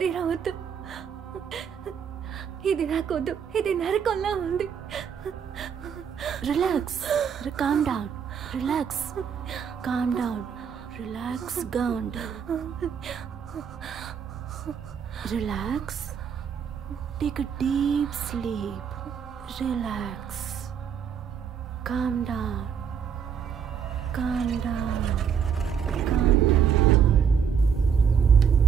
వద్దు. ఇది నాకొద్దు. ఇది నరకంలా ఉంది. Relax. Calm down. Relax. Calm down. Relax. Calm down. Relax. Take a deep sleep. Relax. Calm down. Calm down. Calm down.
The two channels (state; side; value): quieter; left; 7.4 dB